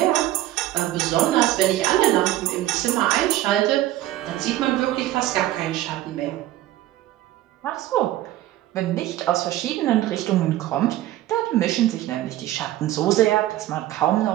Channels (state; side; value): quieter; left; 14.7 dB